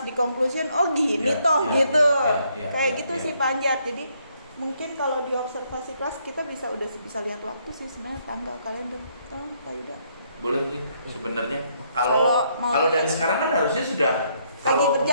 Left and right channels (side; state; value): both; inverted; correlation -0.71